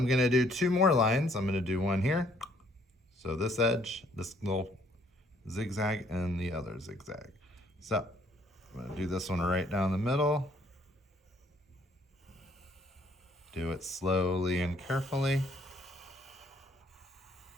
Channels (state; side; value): normal; both; correlation 0.64